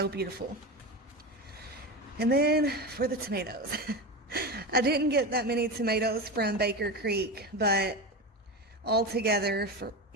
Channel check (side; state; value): both; normal; correlation 0.21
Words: beautiful. And then for the tomatoes, I didn't get that many tomatoes from Bakercreek, but altogether,